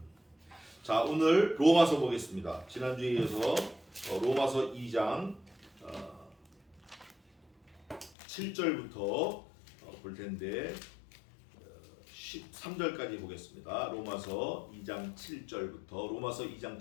자, 오늘 로마서 보겠습니다. 지난주에 이어서 로마서 2장 7절부터 볼 텐데 13절까지 보겠습니다. 로마서 2장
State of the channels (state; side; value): drops out; right; at 8.2 s